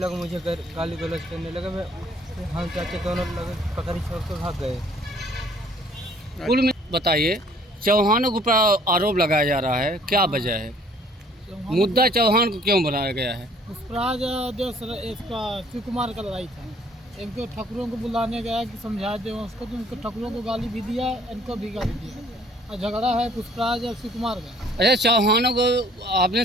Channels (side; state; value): both; normal; correlation 0.58